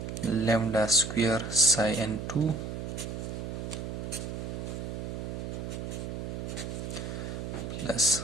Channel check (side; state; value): right; noise; hum, 5 dB below the sound